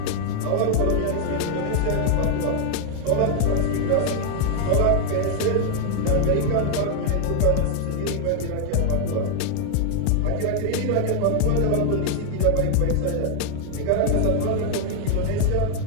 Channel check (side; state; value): both; different; correlation 0.00